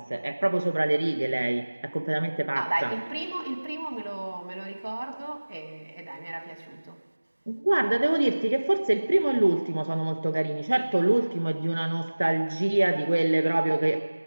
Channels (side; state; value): both; inverted; correlation -1.00